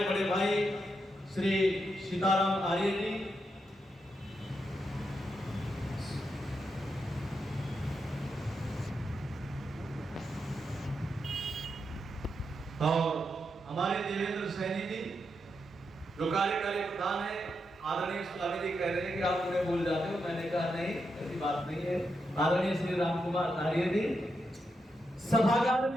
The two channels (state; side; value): normal; both; correlation 0.84